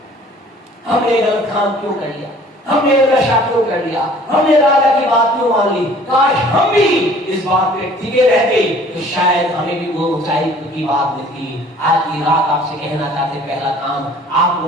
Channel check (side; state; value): both; normal; correlation 0.52